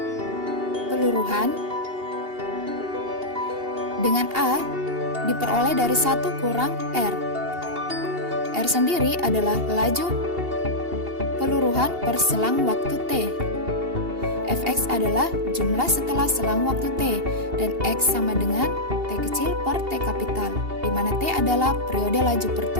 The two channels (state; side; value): late; left; 2.8 ms